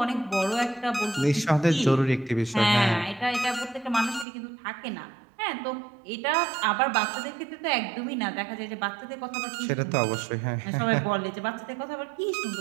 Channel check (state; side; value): drops out; left; at 4.2 s